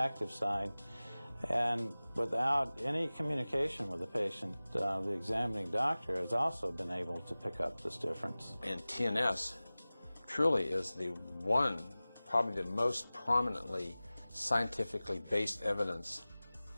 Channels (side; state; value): both; inverted; correlation -0.98